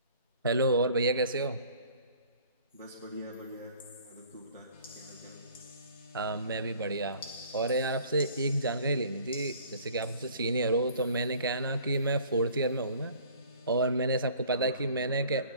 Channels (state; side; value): inverted; both; correlation -0.52